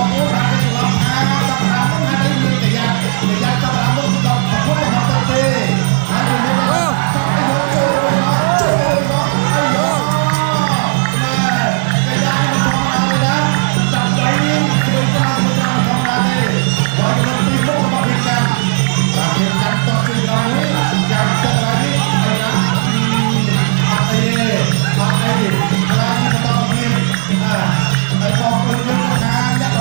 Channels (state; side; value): silent; left; 71 dB below the other